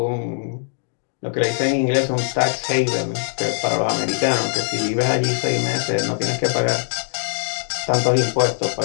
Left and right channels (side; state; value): right; silent; digital silence